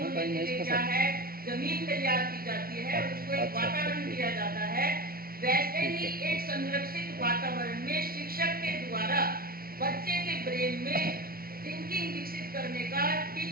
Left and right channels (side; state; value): left; late; 0.43 ms